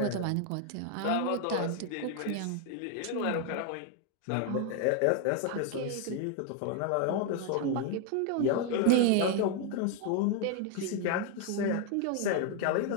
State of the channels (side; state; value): both; different; correlation 0.01